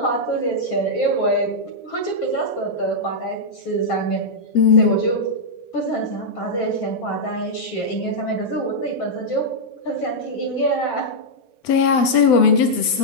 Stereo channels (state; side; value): late; right; 8.0 ms